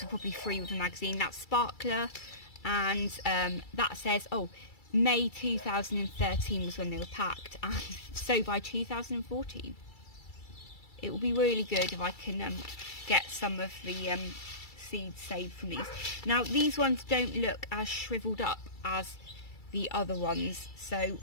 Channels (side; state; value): right; late; 2.3 ms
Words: were probably free with the magazine, that's Sparkler, and that says, oh, May 2013 was when they were packed, and so by 2014. It will be really good if I can get some of the seeds saved from these. Now, these ones don't look as shriveled up as the other ones, so